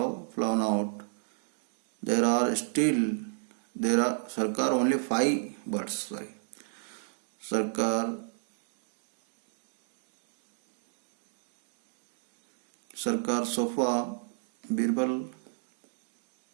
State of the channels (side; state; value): left; silent; digital silence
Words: flown out. Sarkar, only 5 birds, sorry. Sarkar, so far. Birbal,